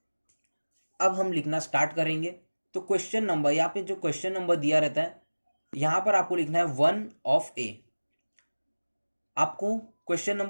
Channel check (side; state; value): both; inverted; correlation -1.00